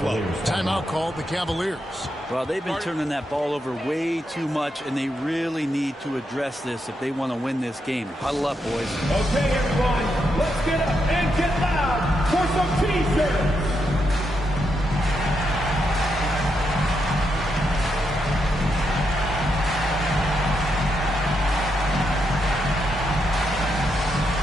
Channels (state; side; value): normal; both; correlation 0.82